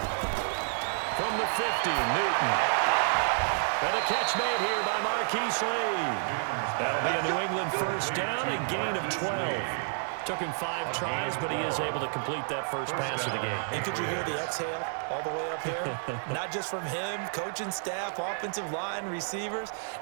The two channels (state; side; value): silent; left; 58 dB below the other